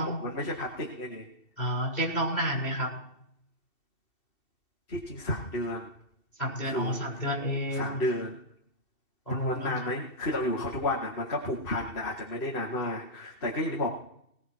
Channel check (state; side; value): late; right; 2.7 ms